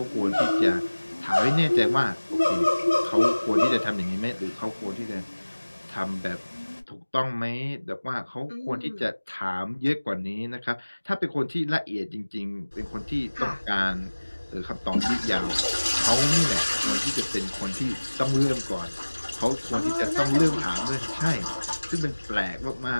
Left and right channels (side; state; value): both; inverted; correlation -1.00